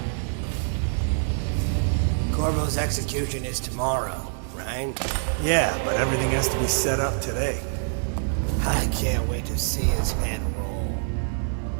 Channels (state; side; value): silent; left; 61 dB below the other